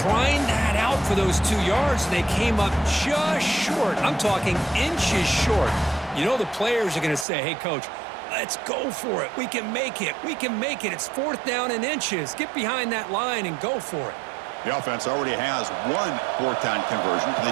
grind that out for those 2 yards, and they came up just short. I'm talking inches short. You know the players are going to say, hey, Coach, let's go for it. We can make it. We can make it. It's 4th down and inches. Get behind that line and go for it. The offense already has one 4th down conversion. Can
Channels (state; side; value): drops out; left; at 7.2 s